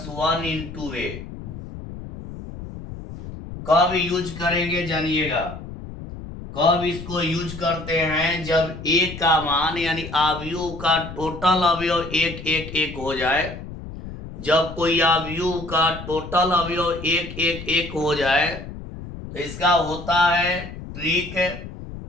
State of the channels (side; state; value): left; noise; rumble, 11 dB below the sound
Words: 1 इंटू ए। कब यूज करेंगे जानिएगा। कब इसको यूज करते हैं, जब ए का मान यानी अवयव का टोटल अवयव एक एक एक हो जाए। जब कोई अवयव का टोटल अवयव एक एक एक हो जाए तो इसका होता है ट्रिक